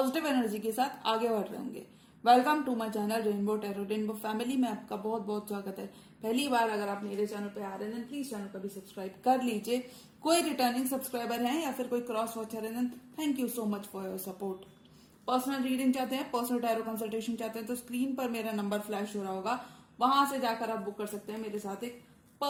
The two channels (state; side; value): identical; both; correlation 1.00